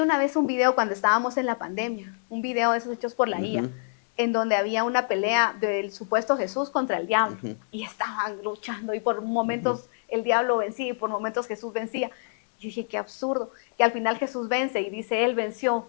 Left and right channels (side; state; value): right; silent; digital silence